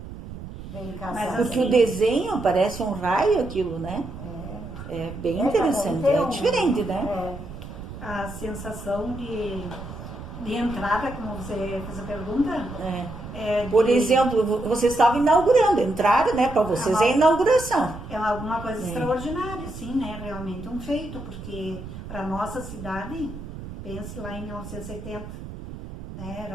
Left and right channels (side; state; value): right; noise; rumble, 11 dB below the sound